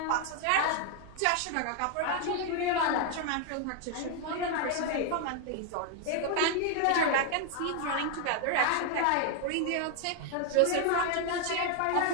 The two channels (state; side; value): different; both; correlation 0.00